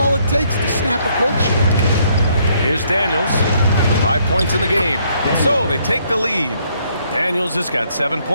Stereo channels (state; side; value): inverted; both; correlation -0.68